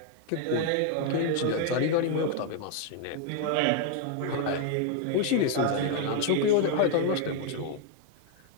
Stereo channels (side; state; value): both; different; correlation 0.00